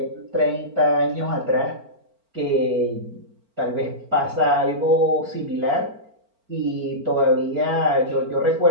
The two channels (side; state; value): left; late; 4.4 ms